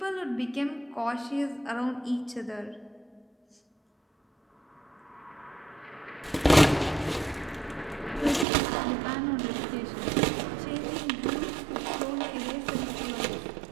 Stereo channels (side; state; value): left; drops out; at 8.5 s